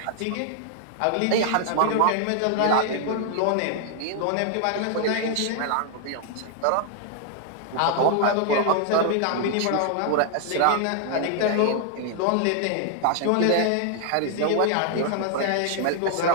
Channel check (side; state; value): both; different; correlation 0.00